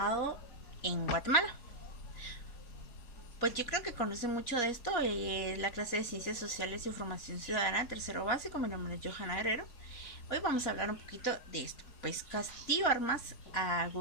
en Guatemala. Pues yo creo que conocen mucho de esto, la clase de Ciencias Sociales y Formación Ciudadana, tercero básico. Mi nombre es Johanna Guerrero. Hoy vamos a hablar un poquito de esto. Pues Castillo Armas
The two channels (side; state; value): right; late; 4.2 ms